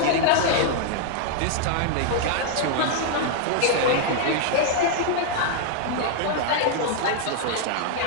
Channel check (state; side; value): different; both; correlation 0.00